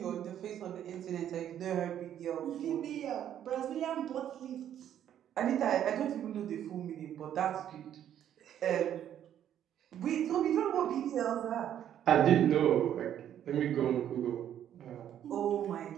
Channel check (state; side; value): quieter; left; 10.4 dB